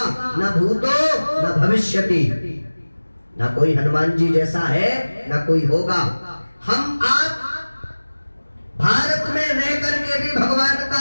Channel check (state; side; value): inverted; both; correlation -1.00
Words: ना भूतो ना भविष्यति। ना कोई हनुमान जी जैसा है, ना कोई होगा। हम आप भारत में रह करके भी भगवान